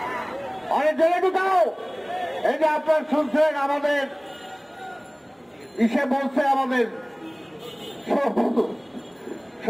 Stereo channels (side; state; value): both; identical; correlation 1.00